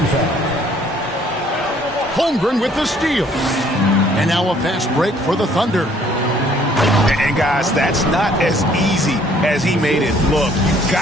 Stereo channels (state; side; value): normal; both; correlation 0.60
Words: foul. Holmgren with the steal. And now a fast break for the Thunder. And guys, that's not as easy as he made it look. You've